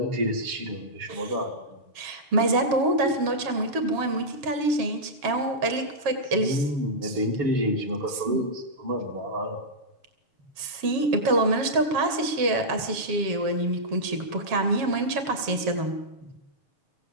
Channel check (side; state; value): left; late; 7.2 ms